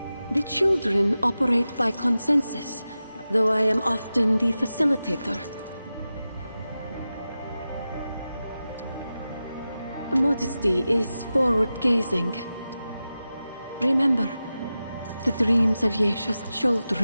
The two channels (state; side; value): inverted; both; correlation -0.93